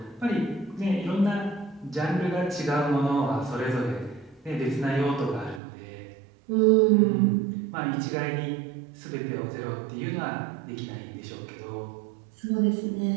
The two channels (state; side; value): drops out; left; at 5.6 s